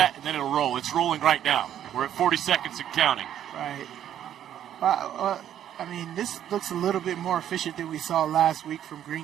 and then it'll roll. It's rolling right now. We're at 40 seconds and counting. Right. I mean, this looks a little bit more efficient than we saw last week from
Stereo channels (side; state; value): left; quieter; 10.6 dB